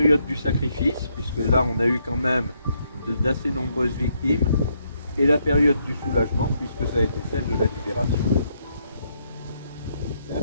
du sacrifice, puisque là on a eu quand même d'assez nombreuses victimes, et la période du soulagement, puisque ça a été celle de la libération. C'est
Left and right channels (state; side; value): inverted; both; correlation -0.75